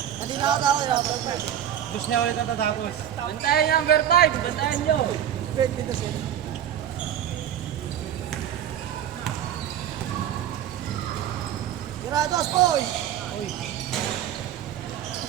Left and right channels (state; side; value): quieter; left; 10.4 dB